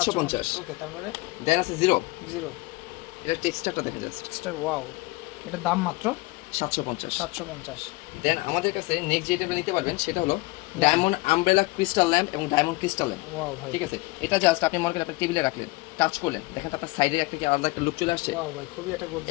ওকে, তারপরে? দেন আছে জিরো। এটা টেক্সচারটা দেখেন জাস্ট। Texture, wow. এটার দাম মাত্র 750। দেন আমাদের কাছে নেক্সট যেটা নিতে পারবেন সেটা হলো ডায়মন্ড আমব্রেলা ক্রিস্টাল ল্যাম্প এবং ডায়মন্ড ক্রিস্টাল ল্যাম্প। ওয়াও ভাই, ঠিক আছে? এটা জাস্ট আপনি মনে করেন আপনার টেবিলে রাখলেন, টাচ করলেন, দেখেন আপনার সাইডে একটা কি আলাদা একটা লুক চলে আসছে। ওয়াও ভাই, খুবই এটা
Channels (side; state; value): right; quieter; 23.1 dB